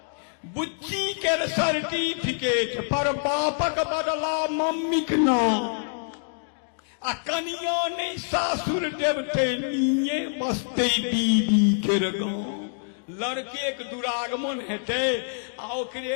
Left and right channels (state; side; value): silent; right; digital silence